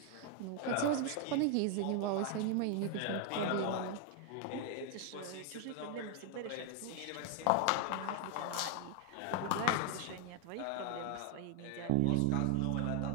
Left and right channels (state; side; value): different; both; correlation 0.00